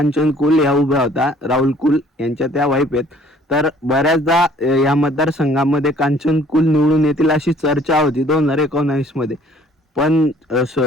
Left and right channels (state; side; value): normal; both; correlation 0.57